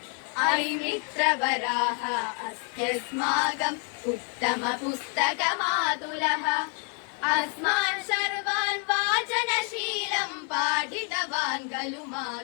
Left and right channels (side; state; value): right; quieter; 38.6 dB